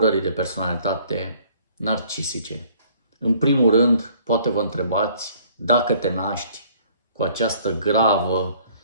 de personalitate narcisice. În primul rând, poate vă întrebați dacă te naști cu această gravă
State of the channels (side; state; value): both; inverted; correlation -0.58